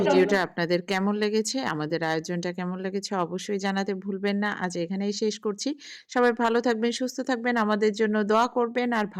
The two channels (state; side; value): identical; both; correlation 1.00